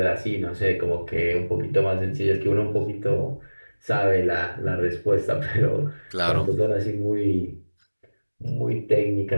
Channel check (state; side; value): inverted; both; correlation -1.00